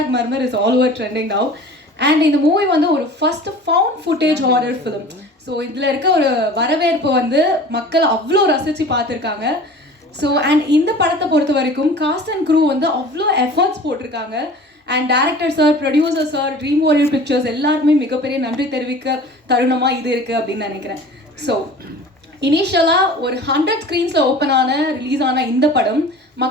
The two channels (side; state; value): both; normal; correlation 0.42